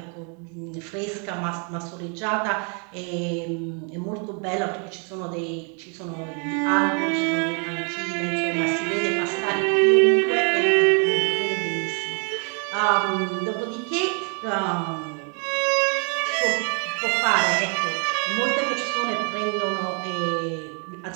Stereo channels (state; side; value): quieter; left; 38.0 dB